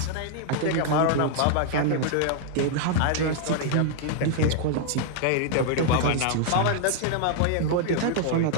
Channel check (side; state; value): both; different; correlation -0.01